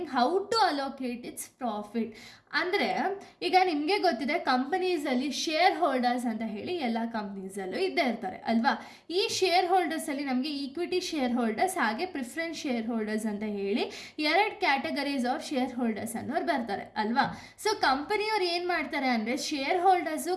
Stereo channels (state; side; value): identical; both; correlation 1.00